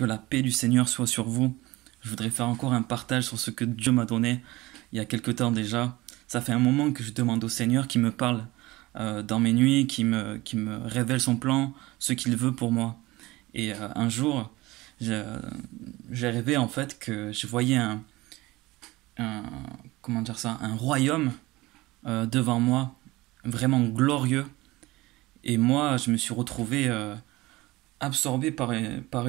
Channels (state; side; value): quieter; left; 20.0 dB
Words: la paix du Seigneur soit sur vous. Je voudrais faire encore un partage sur ce que Dieu m'a donné il y a quelque temps déjà. Ça fait un moment que je demande au Seigneur qui me parle dans mes nuits, qui me révèle son plan, ce qu'il veut pour moi. Et un jour, j'ai j'ai rêvé en fait que je voyais un- comment dire ça, un royaume devant moi, vraiment glorieux. Et moi, je me suis retrouvé absorbé par